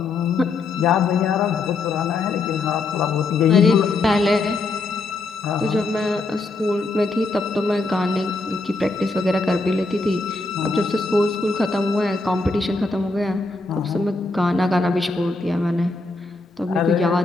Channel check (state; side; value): quieter; right; 3.5 dB